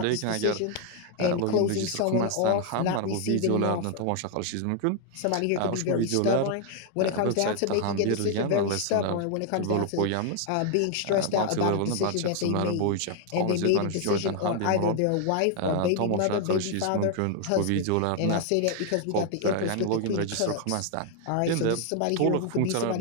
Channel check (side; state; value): both; different; correlation 0.00